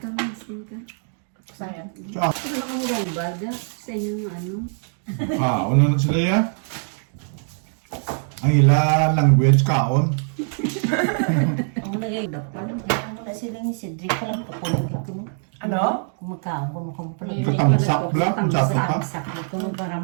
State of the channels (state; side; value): silent; left; 57 dB below the other